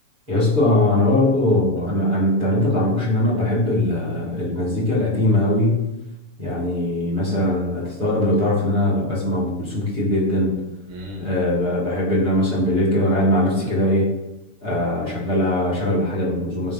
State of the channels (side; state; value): left; late; 6.8 ms